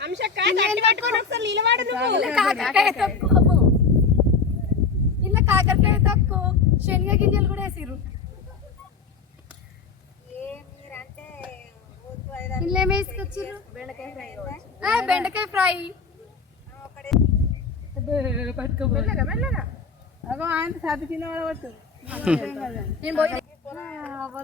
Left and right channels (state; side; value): quieter; right; 5.1 dB